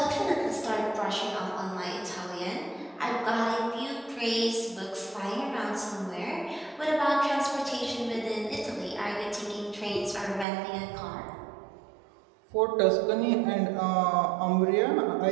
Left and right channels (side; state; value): left; drops out; at 10.5 s